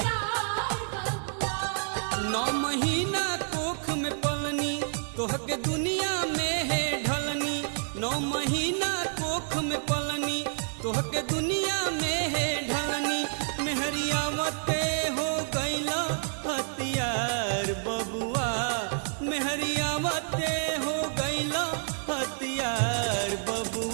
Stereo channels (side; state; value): left; silent; digital silence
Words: 9 महीना कोख में पलनी तोहके दुनिया में है ढलनी 9 महीना कोख में पलनी तोहके दुनिया में है ढलनी मेहरियावते हो गईला हथियार बबुआ मेहरियावते हो गईला हथियार